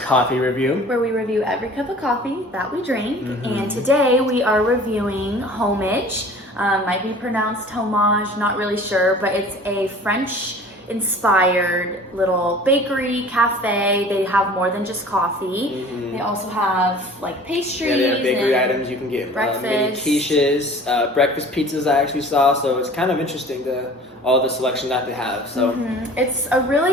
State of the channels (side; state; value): both; normal; correlation 0.45